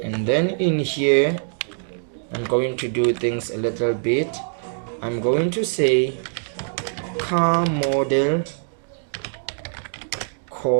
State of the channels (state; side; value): silent; left; digital silence